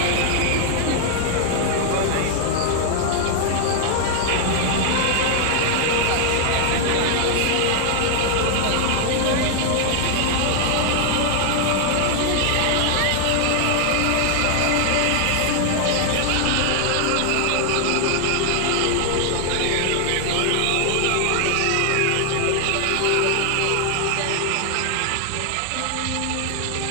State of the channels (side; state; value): both; different; correlation 0.00